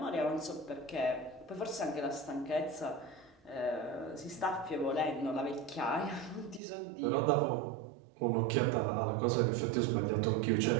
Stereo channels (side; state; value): left; drops out; at 6.6 s